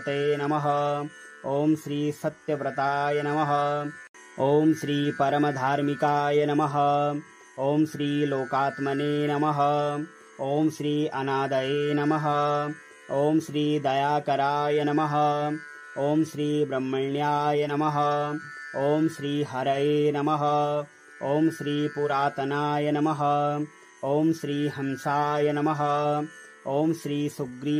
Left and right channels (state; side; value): identical; both; correlation 1.00